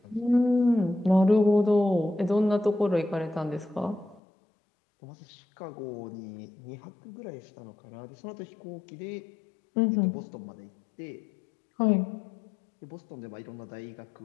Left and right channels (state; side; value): drops out; right; at 4.2 s